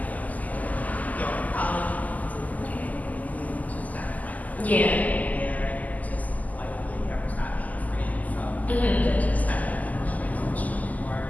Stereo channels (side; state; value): right; late; 0.078 ms